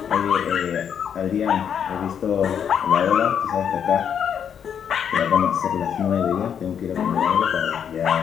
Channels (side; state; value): right; quieter; 8.1 dB